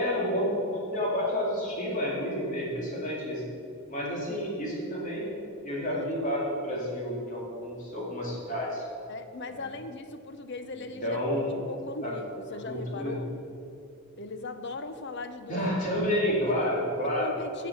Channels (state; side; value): normal; both; correlation 0.03